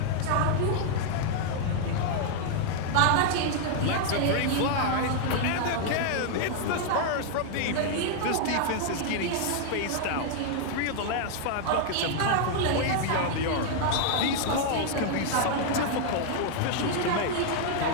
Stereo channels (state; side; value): different; both; correlation 0.00